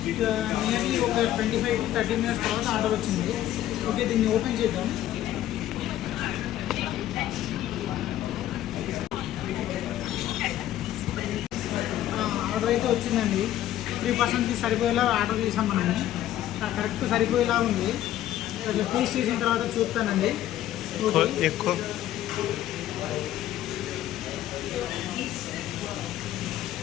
నియర్లీ ఒక 25 to 30 మినిట్స్ తర్వాత ఆర్డర్ వచ్చింది. ఓకే, దీన్ని ఓపెన్ చేద్దాం. ఆర్డర్ అయితే వచ్చిందండి. 3%కి సరిపోయేలా ఆర్డర్ చేసాం మనము. కరెక్ట్ సరిపోయేలా ఉంది. టేస్ట్ చేసిన తర్వాత చూస్తానండి. ఎక్కువ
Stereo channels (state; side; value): quieter; right; 12.8 dB